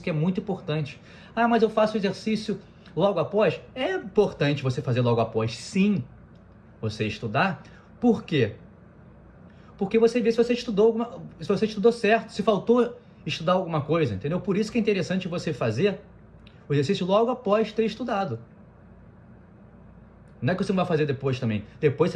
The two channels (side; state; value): both; identical; correlation 1.00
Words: que é muito importante. Mas eu faço o exercício logo após? É importante você fazer logo após, sim, você estudar. Por quê? Porque você vê se você estudou certo, se faltou estudar alguma coisa, entendeu? Por isso que é interessante você fazer o exercício logo após ter estudado. Não é que você não vai fazer depois também. Depois você